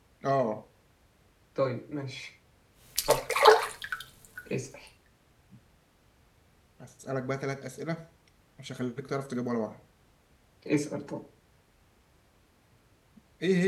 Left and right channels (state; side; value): identical; both; correlation 1.00